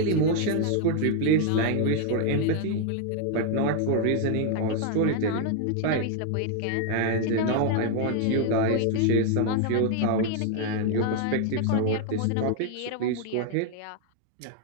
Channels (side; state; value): both; different; correlation 0.00